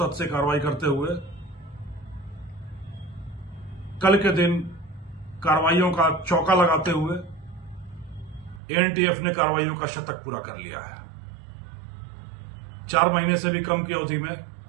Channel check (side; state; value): left; drops out; at 8.6 s